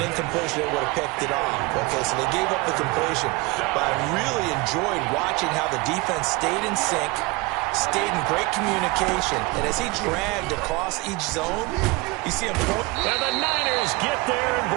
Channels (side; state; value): left; quieter; 23.9 dB